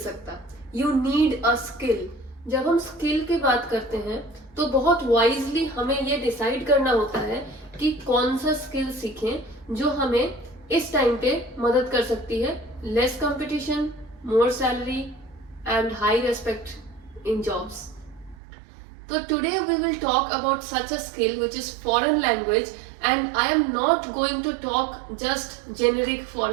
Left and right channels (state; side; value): drops out; left; at 18.4 s